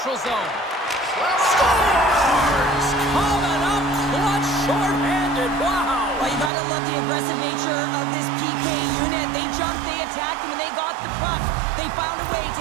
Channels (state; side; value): drops out; left; at 6.5 s